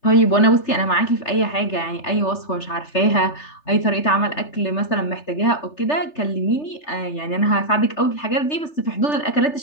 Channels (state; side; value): late; right; 3.3 ms